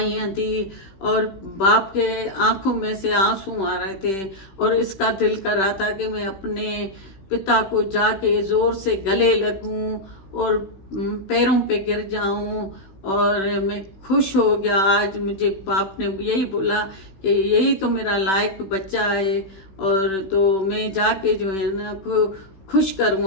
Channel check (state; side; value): late; right; 16 ms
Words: दी। और बाप के आंखों में से आंसू आ रहे थे और इसका दिल कर रहा था कि मैं अपने पिता को जाके ज़ोर से गले लगूं और पैरों पे गिर जाऊं। और मैं खुश हो गया, आज मुझे बाप ने यही बोला कि यही तो मेरा लायक बच्चा है। और तो मैं जाके जो है ना खुश